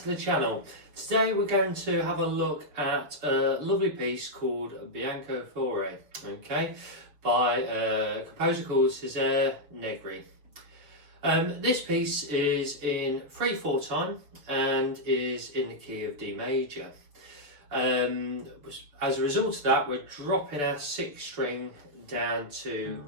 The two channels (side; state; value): left; late; 6.8 ms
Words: the channel. Today we're going to have a look at a lovely piece called Bianco Fiore, by a composer called Cesare Negri. This piece is in 3/4 time and is in the key of D major. As a result of that, we're dropping our 6th string down to